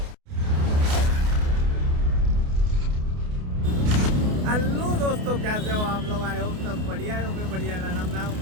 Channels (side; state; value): left; late; 28 ms